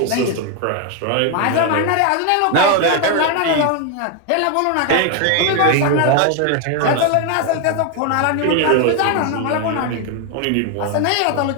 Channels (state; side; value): different; both; correlation 0.01